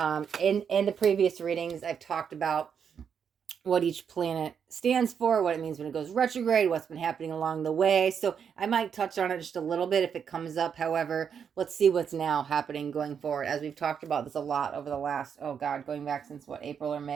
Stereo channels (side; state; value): left; quieter; 7.3 dB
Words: the previous readings, I've talked about what each planet stands for, what it means when it goes retrograde, what's been happening along the way. So I might touch on it just a little bit if it comes up. However, let's see what's now happening going forward, as we've talked about this a lot over the last, going back since what, April or